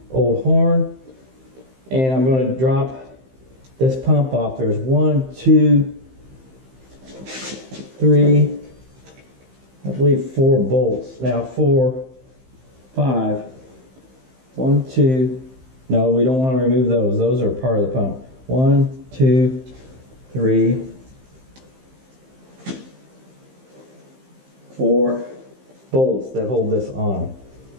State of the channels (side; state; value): left; late; 15 ms